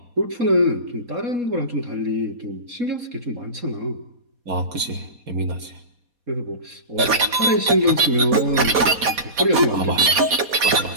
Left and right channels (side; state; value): left; late; 4.2 ms